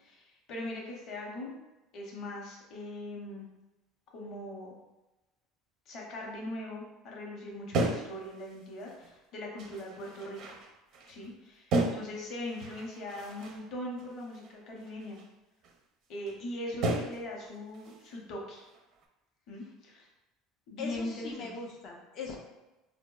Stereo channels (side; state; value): both; normal; correlation 0.47